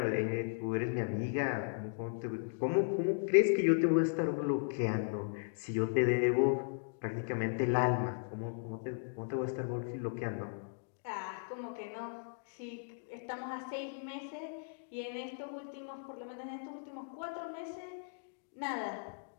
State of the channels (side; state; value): right; silent; digital silence